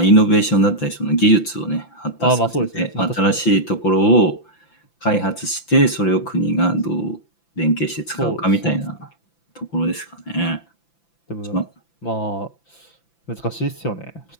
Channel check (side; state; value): right; late; 5.9 ms